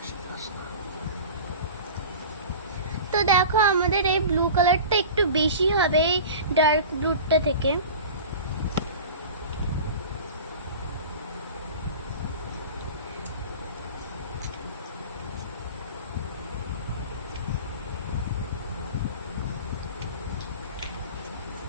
তো দেখো আমাদের এই ব্লু কালারটা একটু বেশি হবে এই ডার্ক ব্লুটা থেকে।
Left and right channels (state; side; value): inverted; both; correlation -0.36